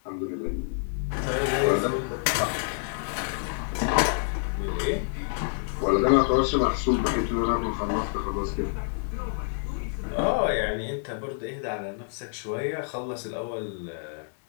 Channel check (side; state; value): right; silent; digital silence